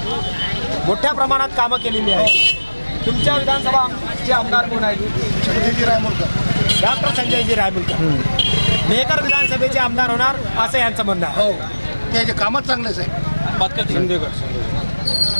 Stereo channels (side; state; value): both; inverted; correlation -1.00